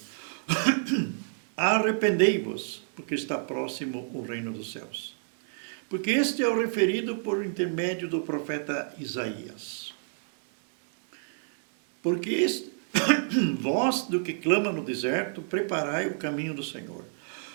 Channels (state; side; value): silent; left; digital silence